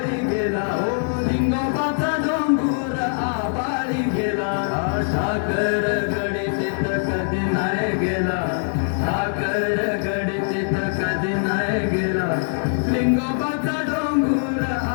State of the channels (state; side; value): silent; right; digital silence